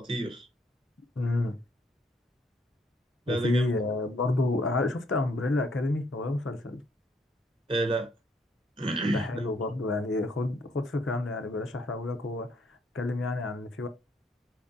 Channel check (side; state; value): both; normal; correlation 0.69